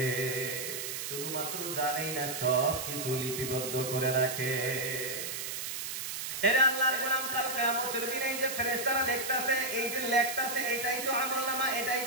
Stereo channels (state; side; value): noise; right; hiss, 5 dB below the sound